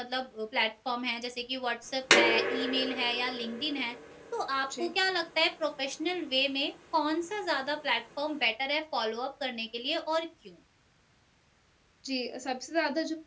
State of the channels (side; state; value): both; identical; correlation 1.00